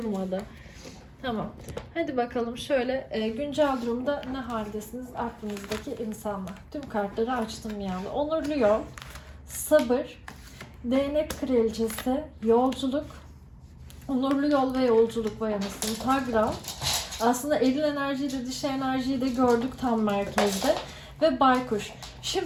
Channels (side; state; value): both; identical; correlation 1.00